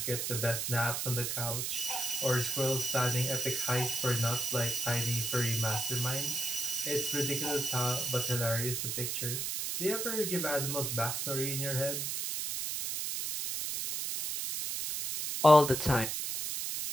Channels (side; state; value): right; noise; hiss, 1 dB below the sound